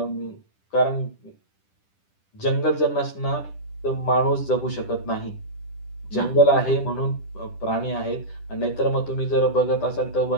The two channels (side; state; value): right; late; 10 ms